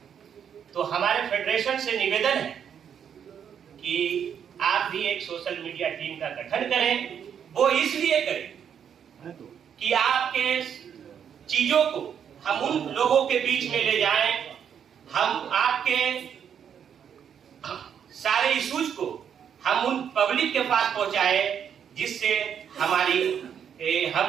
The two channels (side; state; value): left; quieter; 8.2 dB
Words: तो हमारे फेडरेशन से निवेदन है कि आप भी एक सोशल मीडिया टीम का गठन करें। वो इसलिए करें कि आपके चीजों को हम उन लोगों के बीच में ले जाएं, हम आपके सारे इश्यूज को हम उन पब्लिक के पास पहुंचाए जिससे